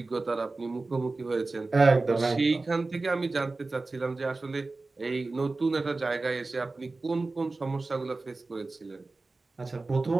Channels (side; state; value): left; quieter; 3.5 dB